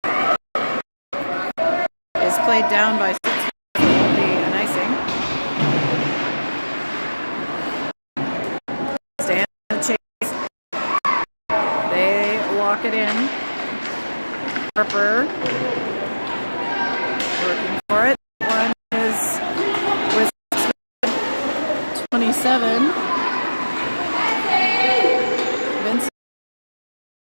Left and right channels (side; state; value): both; inverted; correlation -1.00